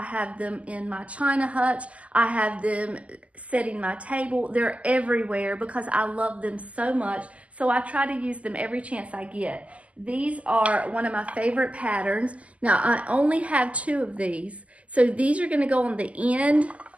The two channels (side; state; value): left; late; 0.066 ms